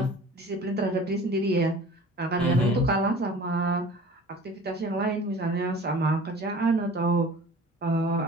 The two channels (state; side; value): normal; both; correlation 0.43